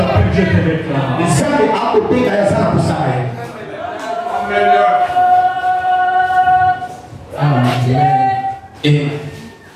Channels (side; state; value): both; identical; correlation 1.00